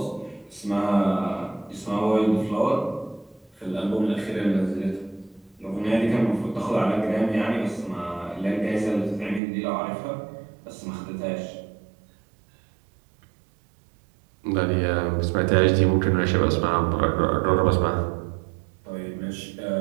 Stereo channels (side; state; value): left; drops out; at 9.4 s